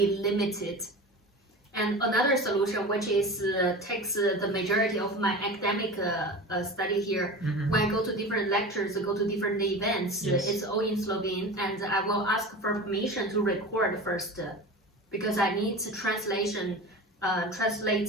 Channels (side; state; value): both; normal; correlation 0.32